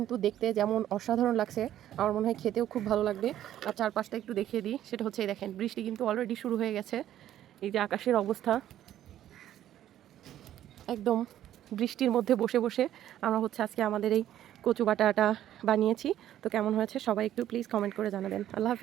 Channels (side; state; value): left; quieter; 11.9 dB